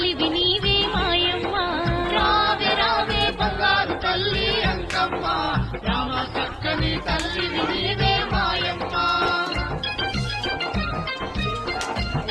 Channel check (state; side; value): identical; both; correlation 1.00